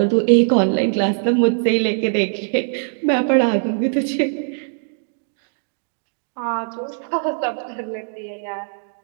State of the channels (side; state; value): left; silent; digital silence